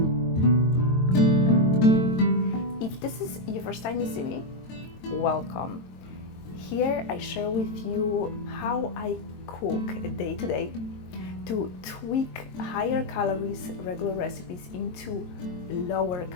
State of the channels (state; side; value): late; right; 22 ms